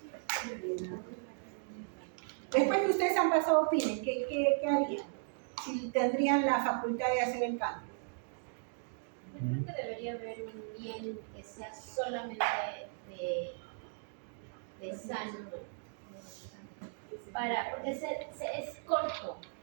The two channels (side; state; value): left; silent; digital silence